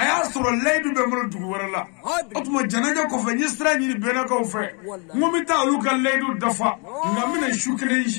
aya soro ledu be mo dugu wera la otuma janaja ko fe nyistra ni bena ko fe ngomi ta lu ka ledu dafa nga mina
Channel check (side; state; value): right; quieter; 34.7 dB